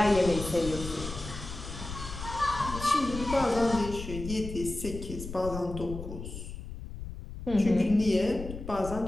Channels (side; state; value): left; noise; rumble, 9 dB below the sound